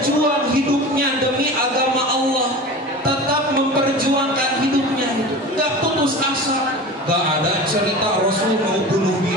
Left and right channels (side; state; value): both; normal; correlation 0.33